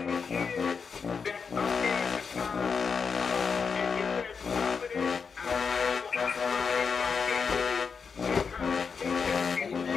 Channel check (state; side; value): quieter; right; 5.7 dB